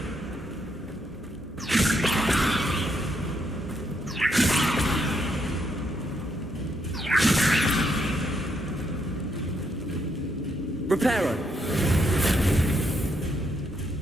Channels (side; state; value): both; normal; correlation 0.77